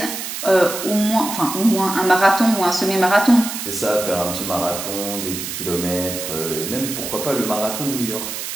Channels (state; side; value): noise; right; hiss, 6 dB below the sound